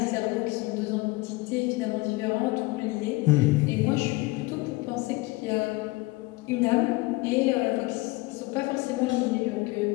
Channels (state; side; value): quieter; right; 22.1 dB